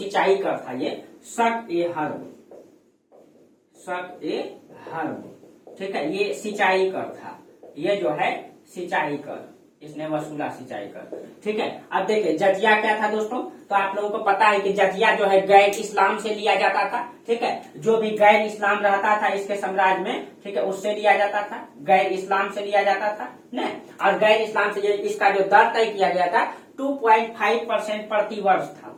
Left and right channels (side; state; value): both; identical; correlation 1.00